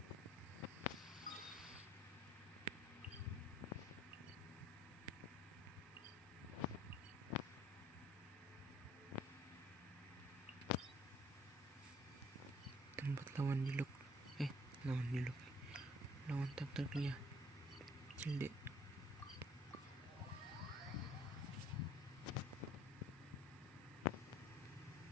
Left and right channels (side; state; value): both; normal; correlation 0.58